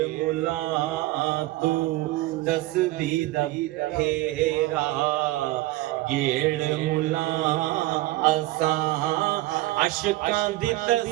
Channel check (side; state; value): left; quieter; 18.1 dB